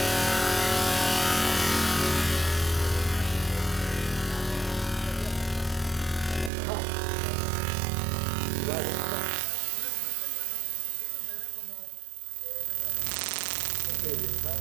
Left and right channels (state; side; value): drops out; left; at 6.5 s